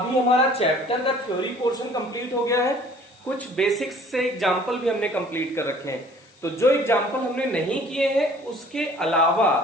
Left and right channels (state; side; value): noise; left; hiss, 30 dB below the sound